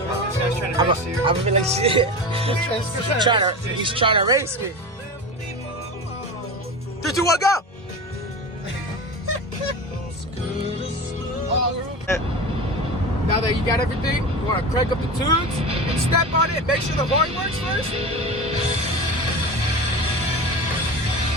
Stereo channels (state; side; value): normal; both; correlation 0.28